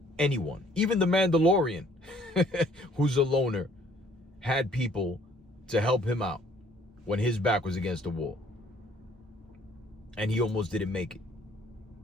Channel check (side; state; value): both; normal; correlation 0.59